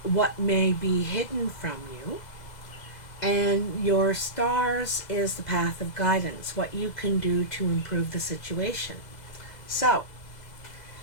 may be hidden from you, and your Stars is the path of guidance, what you can do to improve the situation. So,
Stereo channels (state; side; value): late; right; 2.0 ms